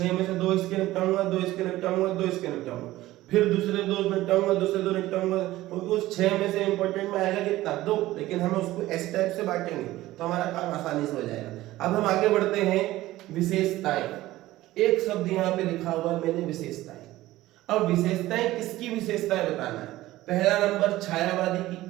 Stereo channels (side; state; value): left; quieter; 16.5 dB